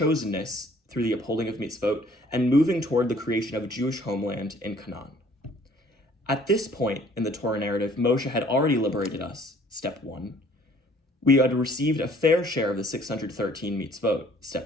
through the upholding of mitzvot, and moving toward the creation of a Jewish homeland in Canaan. At this point in the Torah narrative, Moshe had already liberated us, step 1. We had received a fair share of the 613 mitzvot,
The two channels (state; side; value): normal; both; correlation 0.57